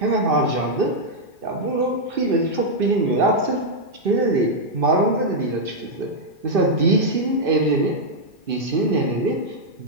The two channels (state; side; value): late; left; 2.4 ms